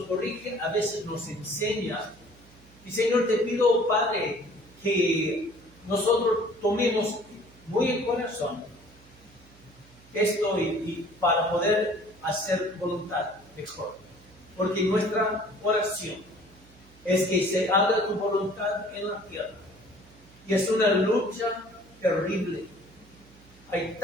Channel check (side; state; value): right; noise; hum, 26 dB below the sound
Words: corrige, a veces nos enseña. Y Señor, te pido, Padre, que nosotros tomemos muy en corazón esto y para poder hacer voluntad mejor. Porque nuestra oración es que se haga tu voluntad en la tierra. Y es una lucha terrible. Hay